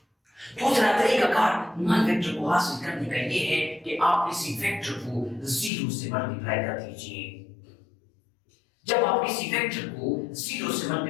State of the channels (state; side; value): drops out; right; at 5.7 s